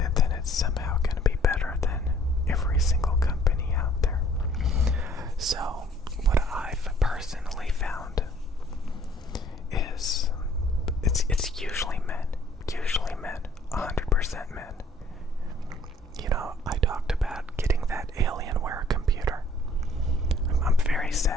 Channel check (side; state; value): both; normal; correlation 0.58